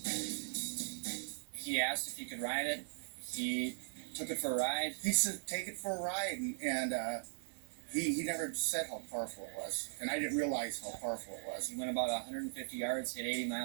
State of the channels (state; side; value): silent; left; digital silence